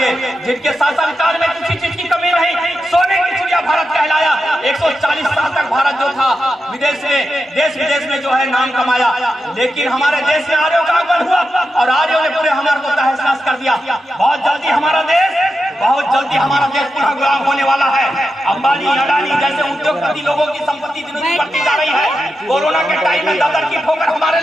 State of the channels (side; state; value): both; normal; correlation 0.89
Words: जिनके शासनकाल में किसी चीज की कमी नहीं, सोने की चिड़िया भारत कहलाया। 140 साल तक भारत जो था विदेश में, देश विदेश में जो है नाम कमाया, लेकिन हमारे देश में आर्यों का आगमन हुआ और आर्यों ने पूरे हमारे को तहस नहस कर दिया। बहुत जल्दी हमारा देश पुनः गुलाम होने वाला है। अंबानी, अडानी जैसे उद्योगपति लोगों की संपत्ति दिन दिन बढ़ती जा रही है। कोरोना के टाइम में दादर की ठोकर हमारे